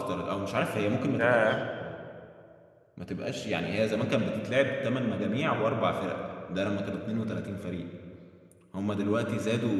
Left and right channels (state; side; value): identical; both; correlation 1.00